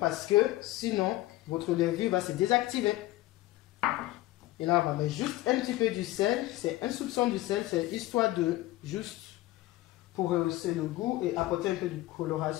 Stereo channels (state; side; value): quieter; right; 17.2 dB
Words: parce que sinon votre levure va se désactiver. Et là, on va mettre juste un petit peu du sel. C'est un soupçon du sel, c'est histoire de juste pour rehausser le goût et apporter un peu de